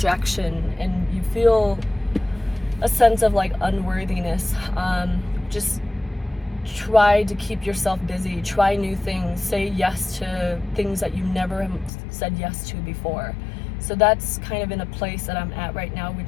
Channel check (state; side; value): drops out; right; at 11.9 s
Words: and you feel a sense of like unworthiness. Just try to keep yourself busy, try new things, say yes to things that you never said yes to before. So that's kind of in a place that I'm at right now,